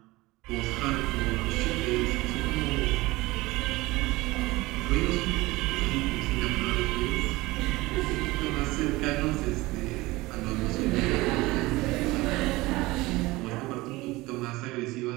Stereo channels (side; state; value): left; quieter; 20.6 dB